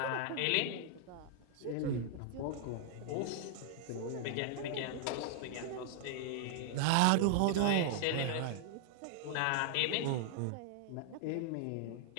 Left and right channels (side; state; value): both; different; correlation 0.00